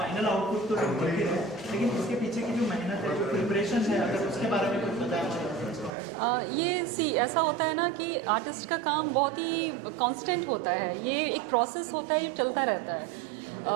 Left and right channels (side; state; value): left; drops out; at 5.9 s